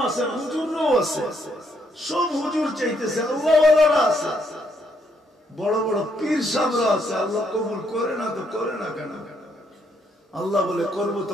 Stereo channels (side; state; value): both; normal; correlation 0.73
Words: আছেন, হুজুররাও আছে, সব হুজুর চাইতেছে, আল্লাহওয়ালারা আছে। বড় বড় পীর সাহেবরা আছে, আল্লাহ কবুল করে না তো করে না কেন? আল্লাহ বলে করব